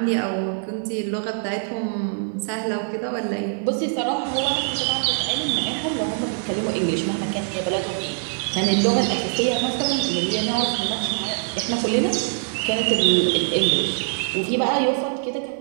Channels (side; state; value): left; silent; 63 dB below the other